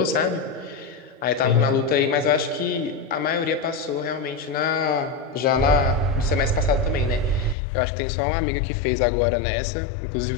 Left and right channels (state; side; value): drops out; right; at 7.6 s